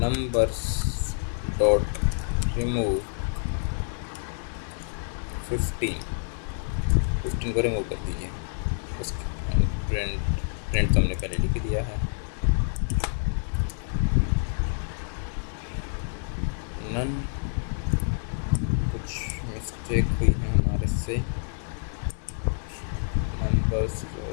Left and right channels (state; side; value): silent; right; digital silence